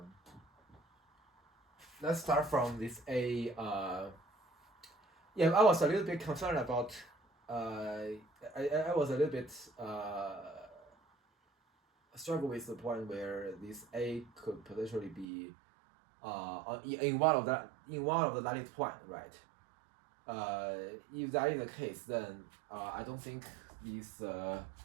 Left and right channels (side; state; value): left; drops out; at 15.2 s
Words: Let's start from this A. Yeah, I was a little bit concerned about. I was a little bit struggle with the point where this A could potentially be in one of the lattice point, right? If that is the case, then I don't think this.